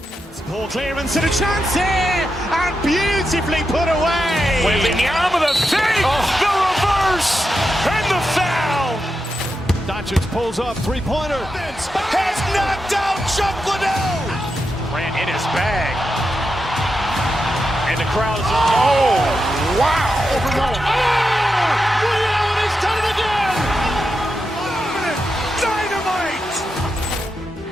Ball clearance and a chance here, and beautifully put away. Wembanyama the fake, the reverse, and the foul. Doncic pulls up, three-pointer. Has knocked out Chuck Liddell. Ran in his bag. And the crowd is, oh, wow. Liddell has done it again. Dynamite.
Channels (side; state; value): both; normal; correlation 0.87